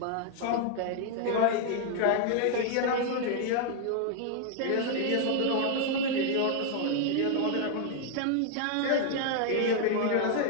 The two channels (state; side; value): different; both; correlation 0.00